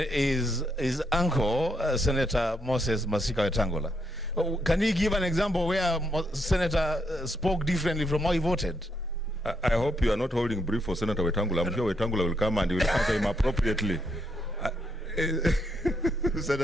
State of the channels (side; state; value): both; normal; correlation 0.77